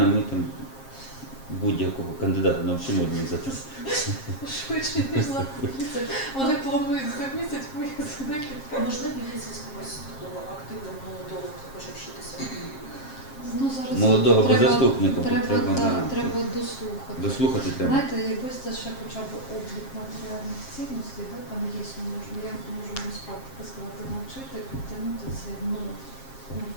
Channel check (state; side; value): late; right; 7.5 ms